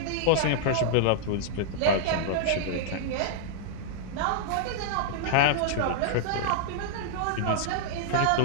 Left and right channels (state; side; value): different; both; correlation -0.01